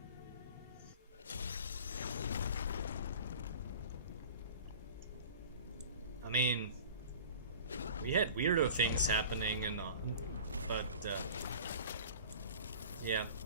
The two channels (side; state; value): both; inverted; correlation -0.41